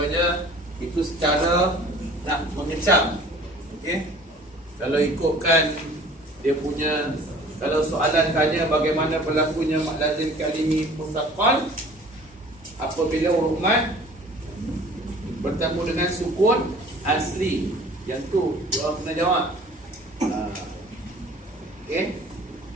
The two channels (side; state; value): both; normal; correlation 0.48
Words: itu secara nak mengecam. Okey. Kalau ikutkan dia punya, kalau soalan tanya bagaimana berlakunya mad lazim kalimi muthaqqal apabila huruf mad bertemu dengan sukun asli, yang tu orang kena jawab. Okey.